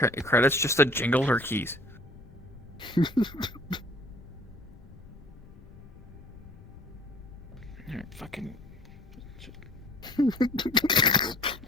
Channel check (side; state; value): left; noise; rumble, 19 dB below the sound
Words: credits just to jingle her keys. Alright, fucking.